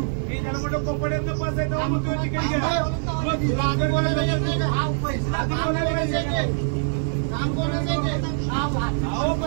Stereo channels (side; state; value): left; silent; digital silence